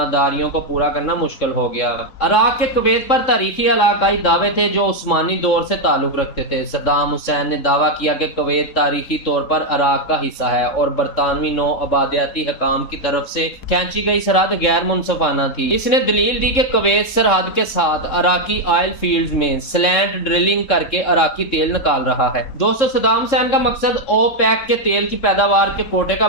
داریوں کو پورا کرنا مشکل ہو گیا۔ عراق کے کویت پر تاریخی علاقائی دعوے تھے جو عثمانی دور سے تعلق رکھتے تھے۔ صدام حسین نے دعویٰ کیا کہ کویت تاریخی طور پر عراق کا حصہ ہے اور برطانوی نو آبادیاتی حکام کی طرف سے کھینچی گئی سرحد غیر منصفانہ تھی۔ اس نے دلیل دی کہ کویت سرحد کے ساتھ عراقی آئل فیلڈز میں سلینٹ ڈرلنگ کر کے عراقی تیل نکال رہا ہے۔ دوستو، صدام حسین کا مقصد اوپیک کے تیل کی پیداوار کے کوٹے کا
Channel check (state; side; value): late; right; 3.7 ms